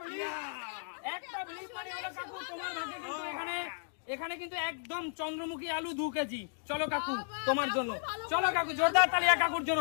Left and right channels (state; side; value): silent; right; digital silence